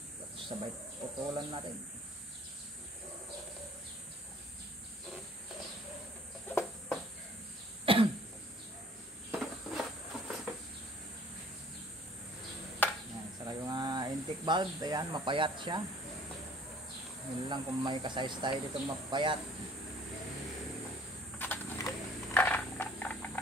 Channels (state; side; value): normal; both; correlation 0.54